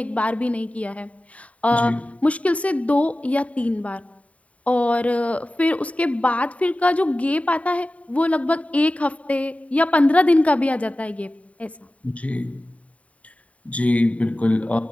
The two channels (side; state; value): right; late; 0.067 ms